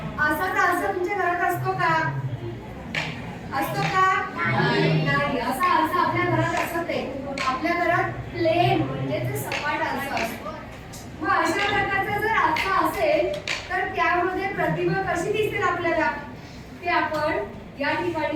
असाच आरसा तुमच्या घरात असतो का? असतो का? नाही। असा आरसा आपल्या घरात असत आहे। आपल्या घरात प्लेन म्हणजे ते सपाट आरसा असतो। मग अशा प्रकारचा जर आरसा असेल तर त्यामध्ये प्रतिमा कशी दिसेल आपल्याला ते आपण या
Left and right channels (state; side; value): identical; both; correlation 1.00